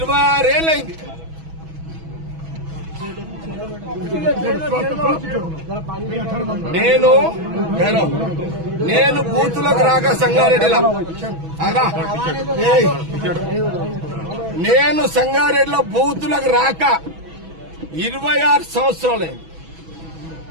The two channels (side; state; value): left; late; 6.1 ms